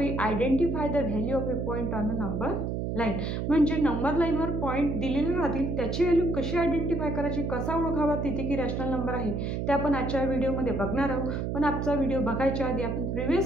identify the value of a point on a number line. म्हणजे नंबर लाईनवर पॉईंट दिलेले राहतील, त्याची व्हॅल्यू कशी आयडेंटिफाय करायची, कसा ओळखावा तिथे की रॅशनल नंबर आहे, ते आपण आजच्या व्हिडिओमध्ये बघणार आहोत. पण आजचा व्हिडिओ बघायच्या आधी आपण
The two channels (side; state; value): right; noise; hum, 2 dB below the sound